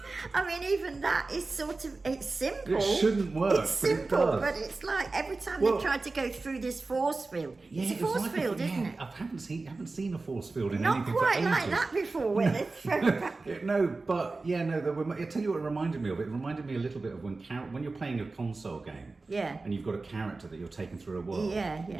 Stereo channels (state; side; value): quieter; left; 3.6 dB